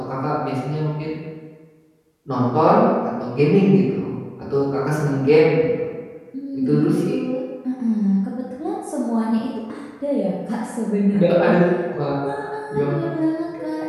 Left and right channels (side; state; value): both; identical; correlation 1.00